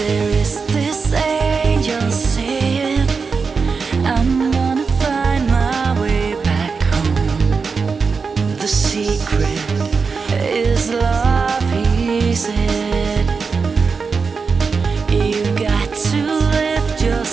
is this angel saying, I'm gonna find my way back home. The secret is love, he said. You've got to lift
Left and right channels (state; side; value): quieter; left; 5.0 dB